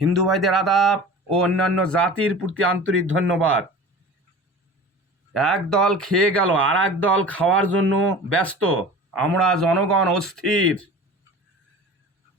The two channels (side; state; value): both; normal; correlation 0.38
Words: হিন্দু ভাইদের আদাব ও অন্যান্য জাতির প্রতি আন্তরিক ধন্যবাদ। এক দল খেয়ে গেল, আর এক দল খাওয়ার জন্য ব্যস্ত। আমরা জনগণ অস্থির।